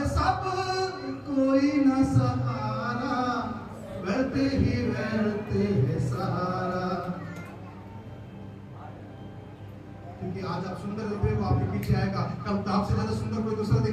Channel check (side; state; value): both; identical; correlation 1.00